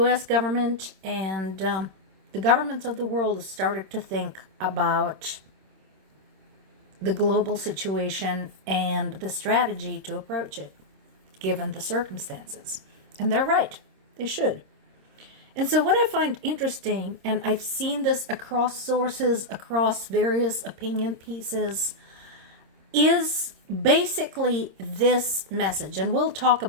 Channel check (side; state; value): left; late; 26 ms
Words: government and the governments of the world started to think about the global situation and the strategy to approach it, given the circumstances. And they're right. They should. And so what I find interesting, and I've seen this across sources, across various opinion pieces, is basically this message. And we'll talk